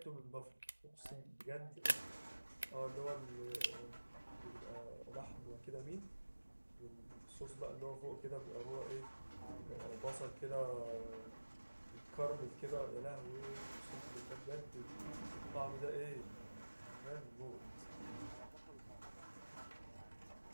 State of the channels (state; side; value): inverted; both; correlation -1.00